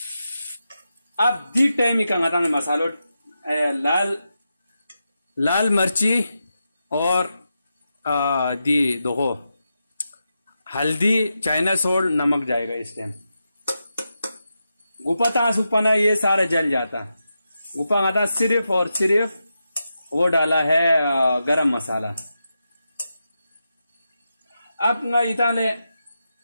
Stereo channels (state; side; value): inverted; both; correlation -0.88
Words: अब दी टाइम ही कंगा मसालो लाल मिर्ची और दी देखो हल्दी चाइना सॉल्ट नमक जाएगा इस टाइम। गुपा तास उपना ये सारे जल जाता। गुपा आता सिर्फ और सिर्फ वो डाला है गरम मसाला। अब ना इताने